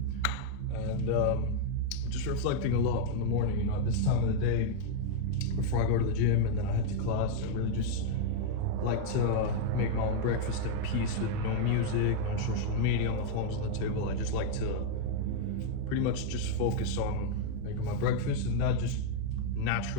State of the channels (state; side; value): different; both; correlation 0.00